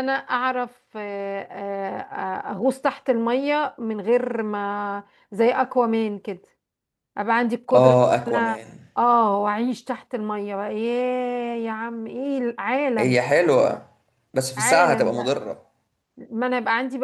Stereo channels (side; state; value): both; identical; correlation 1.00